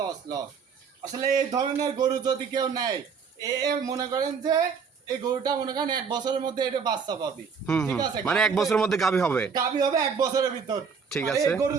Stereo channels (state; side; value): quieter; left; 6.0 dB